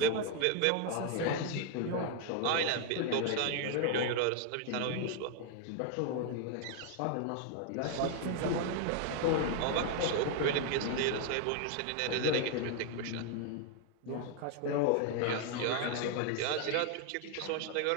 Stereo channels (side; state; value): both; different; correlation 0.00